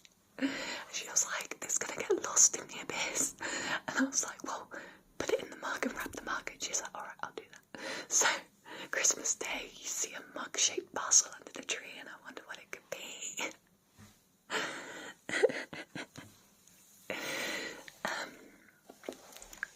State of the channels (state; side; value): identical; both; correlation 1.00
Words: And she was like, this is gonna get lost in the abyss. And I was like, well, put it in the mug and wrap the mug. And she's like, alright, I'll do that. So Christmas Day, you see a mug-shaped parcel under the tree, and I wonder what it could be.